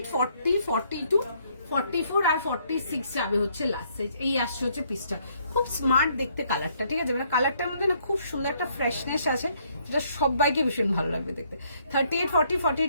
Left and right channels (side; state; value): both; inverted; correlation -0.68